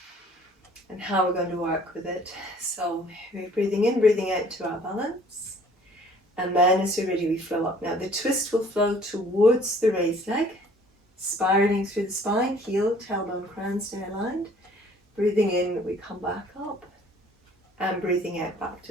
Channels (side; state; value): both; normal; correlation 0.55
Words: and how we're going to work with it. So we're breathing in, breathing out to our balance, and then as we're ready we flow up. Now the twist will flow towards the raised leg, spiraling through the spine, heel, tailbone, crown stay aligned. Breathing in, we come back up, and breathing out back